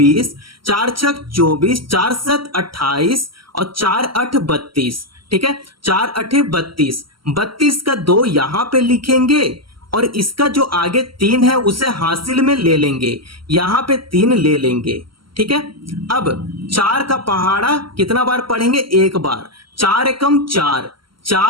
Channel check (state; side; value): late; left; 0.74 ms